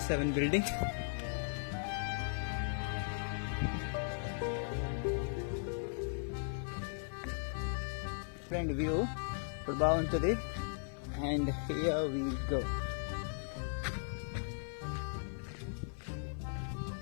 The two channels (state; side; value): silent; right; 53 dB below the other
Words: building. Front view ఇప్పుడు బాగుంటుంది. And here we go.